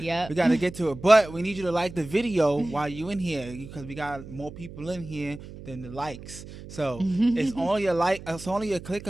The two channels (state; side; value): noise; right; hum, 14 dB below the sound